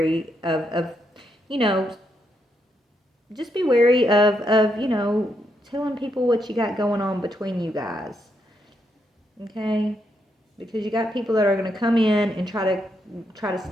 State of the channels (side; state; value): both; normal; correlation 0.79